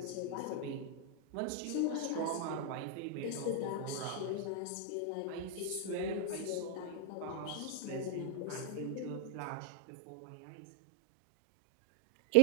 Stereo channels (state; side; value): different; both; correlation 0.00